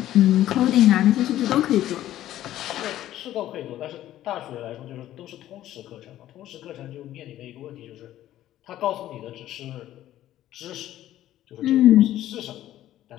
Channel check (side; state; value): right; quieter; 13.3 dB